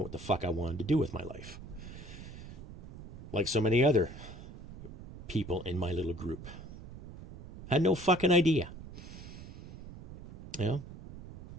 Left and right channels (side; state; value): right; noise; rumble, 12 dB below the sound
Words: what the fuck I wanted to do with my life. Like so many other people in my little group. Had no fucking idea.